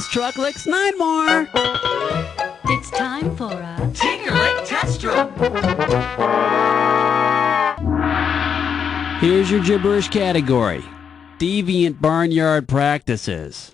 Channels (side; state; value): right; quieter; 7.2 dB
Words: Truck licks 9 more. It's time for a Tinker-Lick test strip. Here's your gibberish category. Deviant barnyard practices.